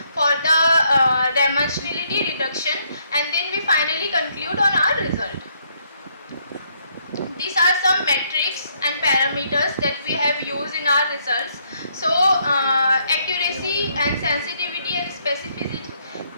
for the dimensionality reduction, and then we finally conclude on our result. These are some metrics and parameters that we have used in our results. So accuracy and sensitivity and specificity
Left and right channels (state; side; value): inverted; both; correlation -0.71